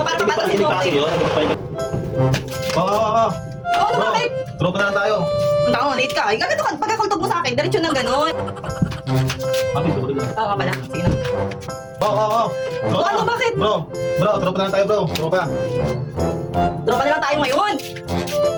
para Hindi pa mapatas hindi mo. pa kasi yun. Oo. Oo, ano bakit? Tropa na lang tayo. Ang taon, late ka. Gaganto ka. Pagkakultog mo sa akin, diretso ng ganon. Bakit? Tuloy na. Oo pala. Sige na. Oo. Oo, ano, bakit? Bro, tropa na lang tayo, bro. Tropa. Tropa na lang tayo ngayon.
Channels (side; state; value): both; identical; correlation 1.00